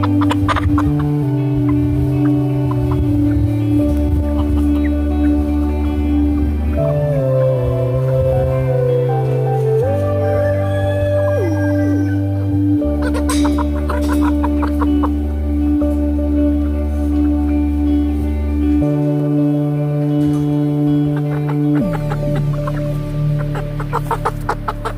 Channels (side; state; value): both; identical; correlation 1.00